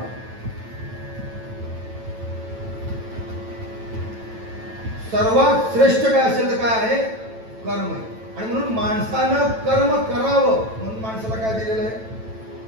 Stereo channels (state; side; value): late; left; 9.1 ms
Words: सर्वात श्रेष्ठ काय असेल तर काय आहे कर्म. आणि म्हणून माणसानं कर्म करावं म्हणून माणसाला काय दिलेलं आहे